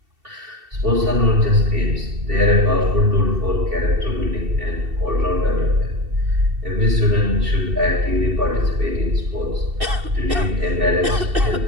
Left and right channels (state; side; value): late; left; 2.7 ms